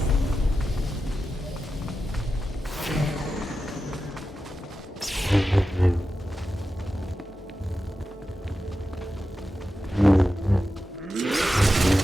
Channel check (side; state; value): both; normal; correlation 0.91